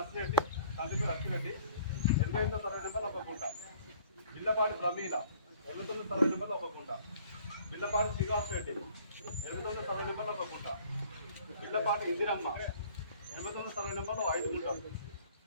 తండ్రి లక్ష్మిరెడ్డి 88వ సర్వే నెంబర్ 1 గుంట, ఇల్లపాటి ప్రమీల 89వ సర్వే నెంబర్ 1 గుంట, ఇల్లపాటి శ్రీనివాస్ రెడ్డి 89వ సర్వే నెంబర్ 1 గుంట, ఇల్లపాటి ఇందిరమ్మ 89వ సర్వే నెంబర్ 5 గుంటలు,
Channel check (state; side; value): inverted; both; correlation -0.55